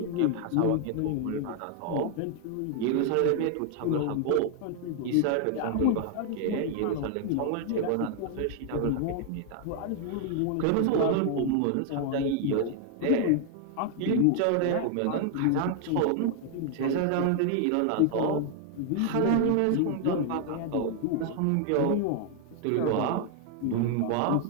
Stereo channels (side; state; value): both; different; correlation 0.00